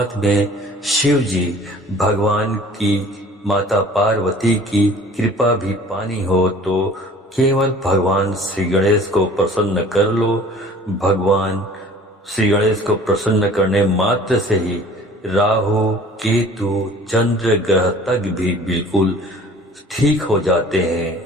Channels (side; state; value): both; normal; correlation 0.48